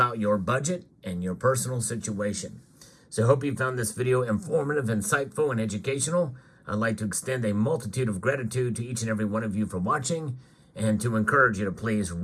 your budget and your personal situation. So I hope you found this video informative, insightful, and educational. I'd like to extend a multitude of gratitude to each and every one of you for watching, and to encourage you to please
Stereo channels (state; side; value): identical; both; correlation 1.00